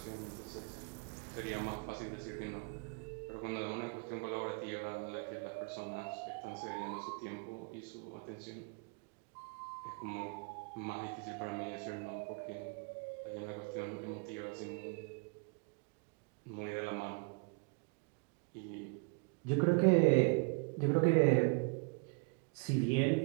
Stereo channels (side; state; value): left; quieter; 33.0 dB